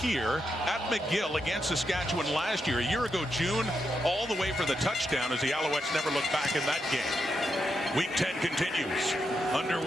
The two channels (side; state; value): both; normal; correlation 0.84